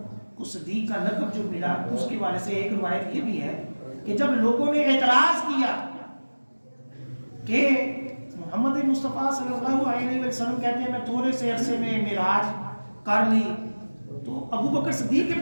کو صدیق کا لقب جو ملا، اس کے بارے سے ایک روایت یہ بھی ہے کہ جب لوگوں نے اعتراض کیا کہ محمد مصطفیٰ صلی اللہ علیہ وسلم کہتے ہیں میں تھوڑے سے عرصے میں معراج کر لی، تو ابو بکر صدیق کے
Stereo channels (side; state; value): both; inverted; correlation -1.00